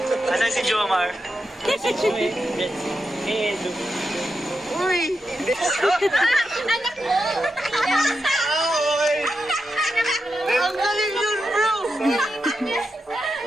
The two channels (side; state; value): both; normal; correlation 0.87